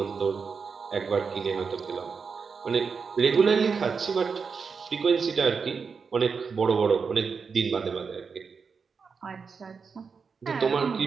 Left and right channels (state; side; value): quieter; left; 5.5 dB